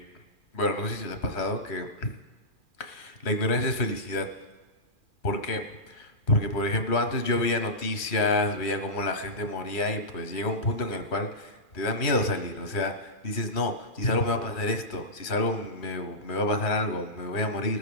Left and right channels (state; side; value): late; right; 2.4 ms